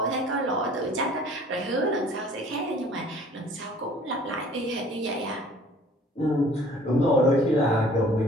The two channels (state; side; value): normal; both; correlation 0.52